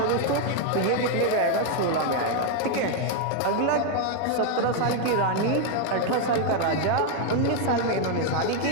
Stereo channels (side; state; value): both; different; correlation 0.01